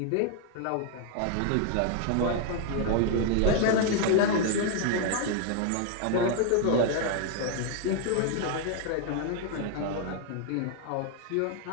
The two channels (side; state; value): both; different; correlation 0.00